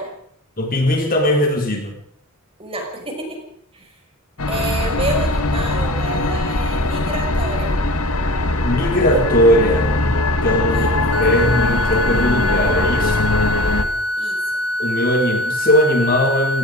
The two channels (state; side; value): normal; both; correlation 0.37